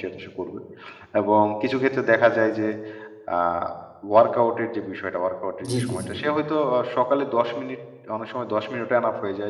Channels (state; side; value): identical; both; correlation 1.00